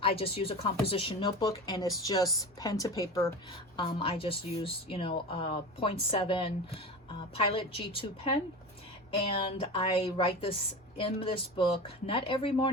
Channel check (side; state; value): both; normal; correlation 0.29